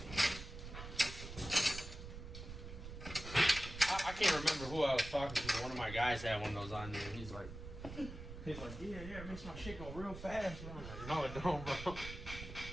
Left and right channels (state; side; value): noise; right; rumble, 10 dB below the sound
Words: I can't remember who I was talking to, but one of my guys had one of those on there, and he's like, yeah, it makes my shit go real fast, bro. I'm like, no, it don't, bro.